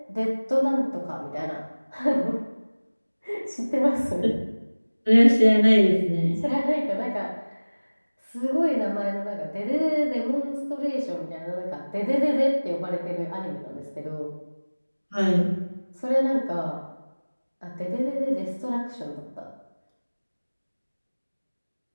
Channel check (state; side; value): inverted; both; correlation -1.00